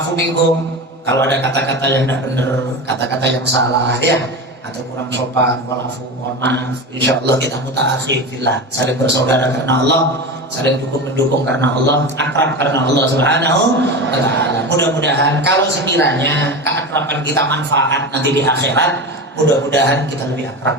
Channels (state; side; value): normal; both; correlation 0.25